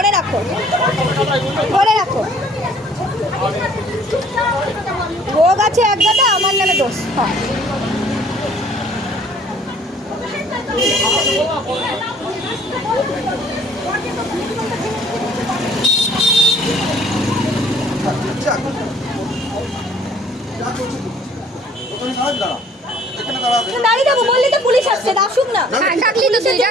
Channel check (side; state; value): both; normal; correlation 0.56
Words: রাখো। রোগ আছে এক গাদা, আমার নামে দোষ। যা করছিস ওখানে দাঁড়া এখানে দাঁড়া দাঁড়িয়ে যাবো বললি তো পুলিশ আসছে আসুক না হ্যাঁ, ডাকলি তো তুই,